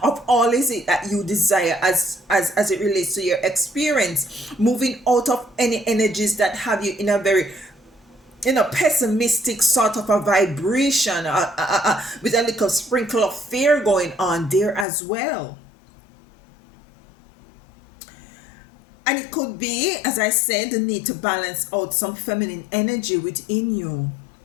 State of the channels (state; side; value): drops out; right; at 14.9 s